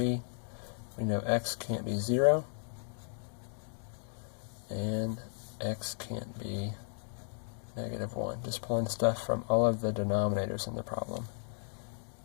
We know x can't be 0, and x can't be -1. Just pulling stuff from all of the denominators in the problem.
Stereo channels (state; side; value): silent; right; digital silence